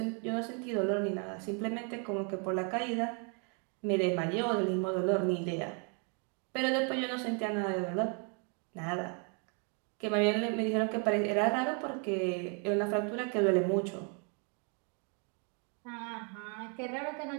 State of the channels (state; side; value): quieter; left; 38.1 dB